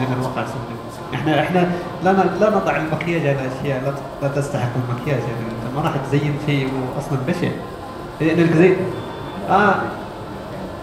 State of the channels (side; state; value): both; identical; correlation 1.00